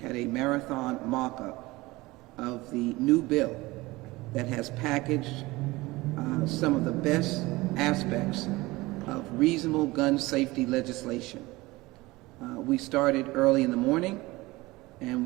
had a marathon mock-up of the new bill that has packaged some of the best aspects of reasonable gun safety legislation. We started early in the morning, and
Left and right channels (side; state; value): left; quieter; 20.8 dB